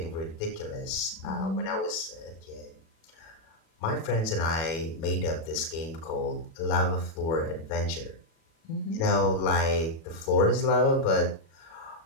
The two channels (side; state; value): right; late; 37 ms